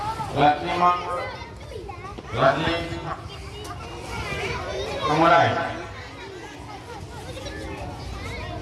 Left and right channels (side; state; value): both; identical; correlation 1.00